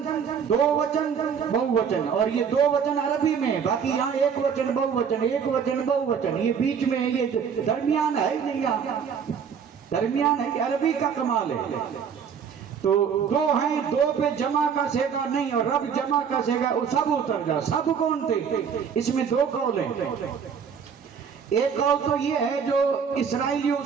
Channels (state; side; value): quieter; left; 7.0 dB